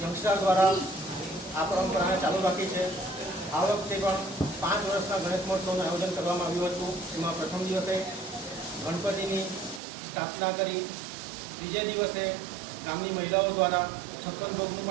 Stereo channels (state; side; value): drops out; left; at 9.8 s